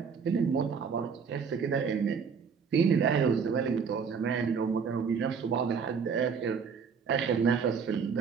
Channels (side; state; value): left; quieter; 6.1 dB